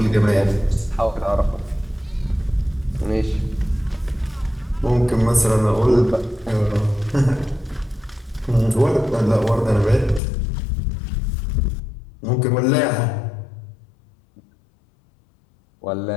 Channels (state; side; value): drops out; right; at 10.2 s